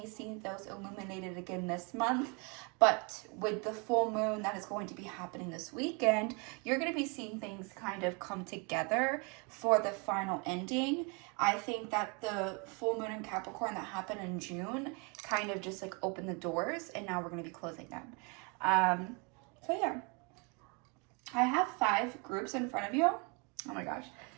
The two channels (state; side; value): quieter; left; 32.6 dB